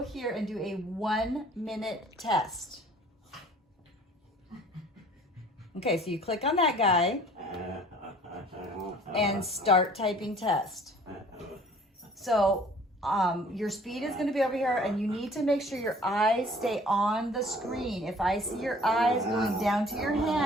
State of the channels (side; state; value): both; normal; correlation 0.52